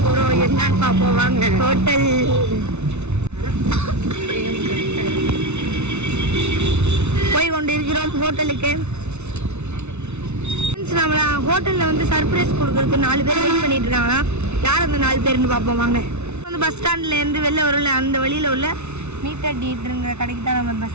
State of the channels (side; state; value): left; late; 0.81 ms